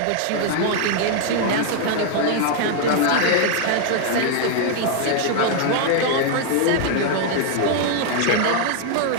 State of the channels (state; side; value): different; both; correlation 0.00